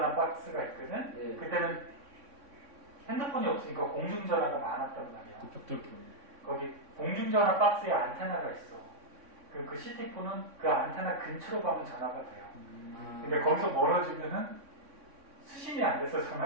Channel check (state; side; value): late; left; 3.6 ms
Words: 박스가 있거든? 네. 그때는 핸드폰이 없으니까 공중전화가 많았단 말이야. 그 벽돌 경 거기 공중전화 박스에 안테나가 있어. 그 시티폰은 그 안테나 근처로 가면 전화가 돼요. 근데 거기서 멀어지면은 수신이 안 돼서